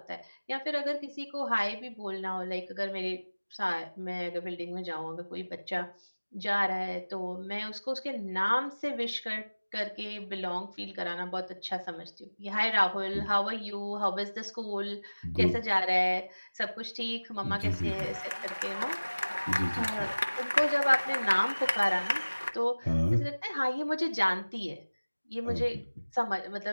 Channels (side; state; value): both; inverted; correlation -1.00